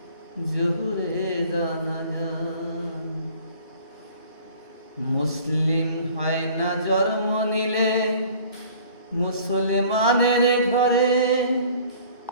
জোহরে জানাজা। মুসলিম হয় না জন্ম নিলে মুসলমানের ঘরে,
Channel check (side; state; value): both; inverted; correlation -0.50